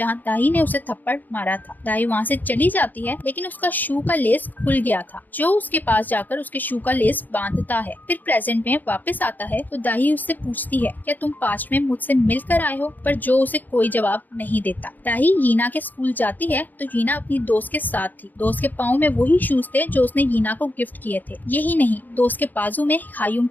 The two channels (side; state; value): right; late; 0.085 ms